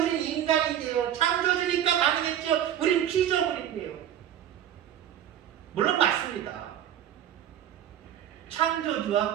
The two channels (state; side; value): quieter; left; 10.7 dB